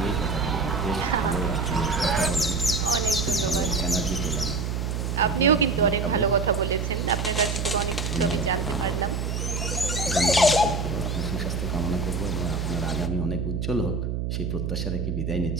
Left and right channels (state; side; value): noise; right; hum, 2 dB below the sound